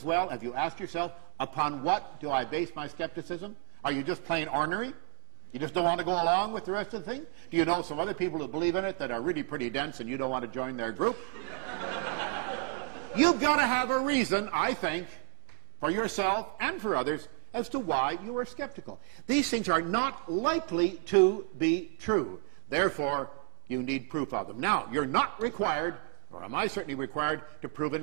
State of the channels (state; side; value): silent; left; 56 dB below the other